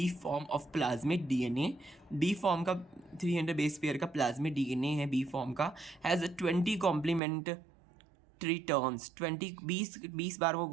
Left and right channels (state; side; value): drops out; left; at 7.2 s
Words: form of plasmid DNA। B form का 300 बेस पेयर का प्लाज्मिड DNA है, बी फॉर्म का, हैज़ 20 कॉम्प्लीमेंट्री टर्न्स, 20 बार वो